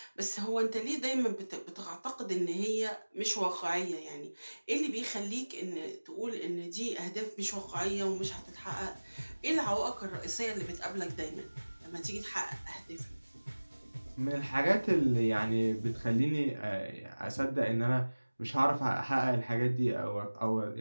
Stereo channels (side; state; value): both; inverted; correlation -1.00